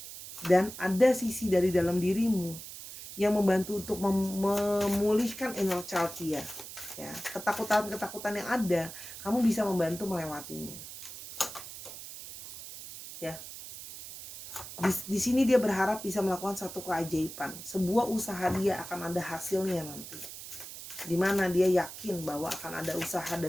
Dan ada sisi dari dalam dirimu yang membantu untuk memulihkan inner child dia, ya. Ketakutan yang ada, kamu bisa membantu melewatinya, ya. Di sini dia berharap bisa melakukan satu keajaiban, sebuah usaha dia akan ada hasilnya nanti, dimana dia yakin bahwa akan ada usaha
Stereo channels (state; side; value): noise; right; hiss, 12 dB below the sound